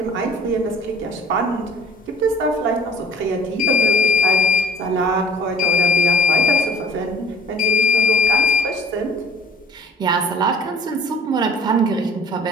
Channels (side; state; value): both; normal; correlation 0.51